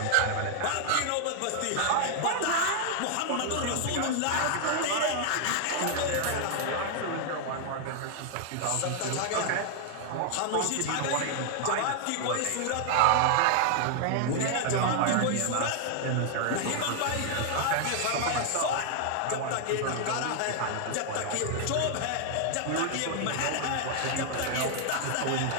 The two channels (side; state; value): both; different; correlation 0.00